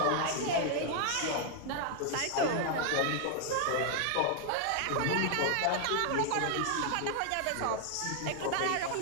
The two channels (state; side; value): different; both; correlation 0.00